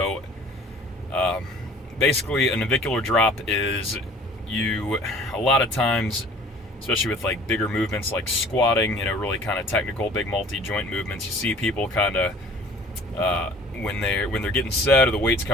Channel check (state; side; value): normal; both; correlation 0.49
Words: basically, a navicular drop is a lot of times, especially with like bigger movements like squatting, really kind of technical, big multi-joint movements, you see people kind of, when they're getting set or the weight's